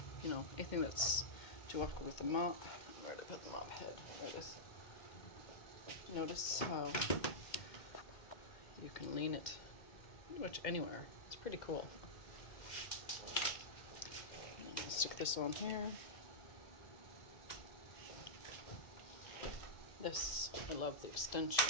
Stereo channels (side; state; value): right; late; 2.1 ms